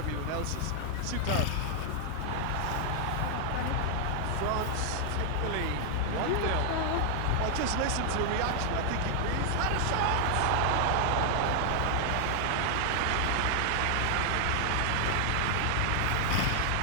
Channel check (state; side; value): different; both; correlation 0.00